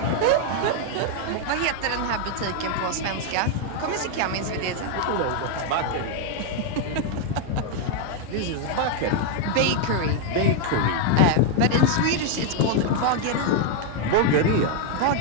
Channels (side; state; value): both; different; correlation 0.00